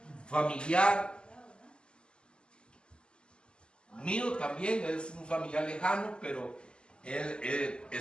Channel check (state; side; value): late; right; 0.050 ms